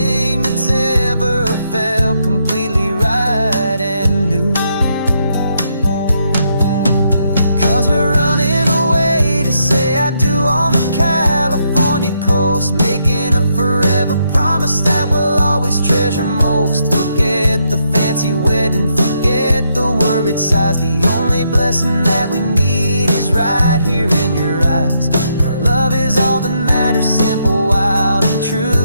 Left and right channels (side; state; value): both; inverted; correlation -0.77